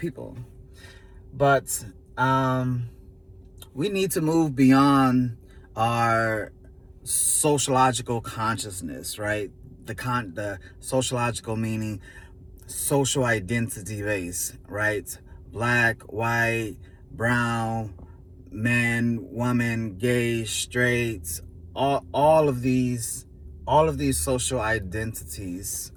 But um, we need to move beyond our sociological consciousness, right? The sociological meaning social identity base, right? Black, white, brown, man, woman, gay, straight, all of these social identities,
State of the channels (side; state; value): both; identical; correlation 1.00